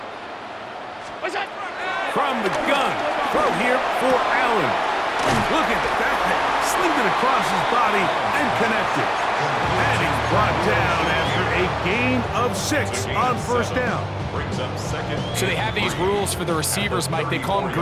From the gun, throw here for Allen. Look at that, slinged it across his body and connected. And he's brought down after a gain of 6 on first down. Brings up 2nd. So they have these rules for the receivers, Mike. They call them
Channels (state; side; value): identical; both; correlation 1.00